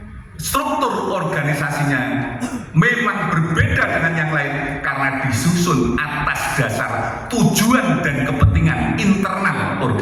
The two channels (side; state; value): both; identical; correlation 1.00